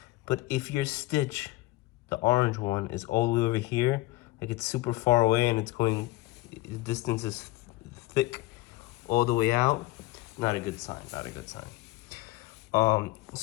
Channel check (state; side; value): quieter; right; 18.3 dB